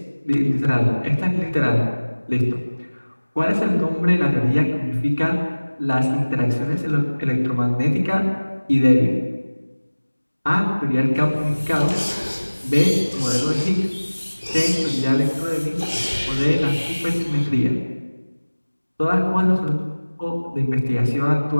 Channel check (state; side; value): inverted; both; correlation -1.00